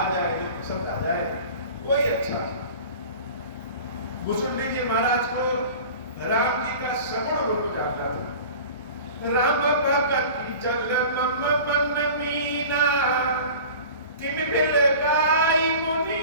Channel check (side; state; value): both; inverted; correlation -0.39